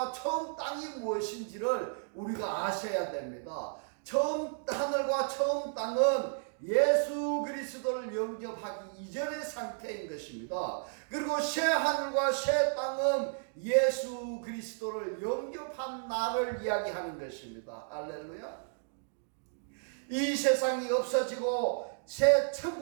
처음 땅이 무엇인지를 우리가 아셔야 됩니다. 처음 하늘과 처음 땅은 예수 그리스도를 영접하기 이전의 상태인 것입니다. 그리고 새 하늘과 새 땅은 예수 그리스도를 영접한 날을 이야기하는 것입니다. 할렐루야. 이 세상이 없어지고 새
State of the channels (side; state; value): left; silent; digital silence